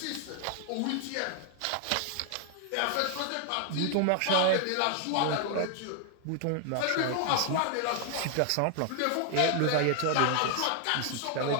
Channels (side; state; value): both; different; correlation 0.00